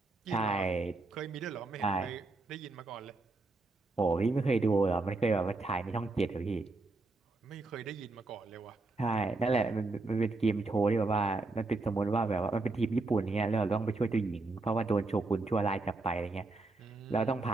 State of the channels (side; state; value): left; quieter; 3.3 dB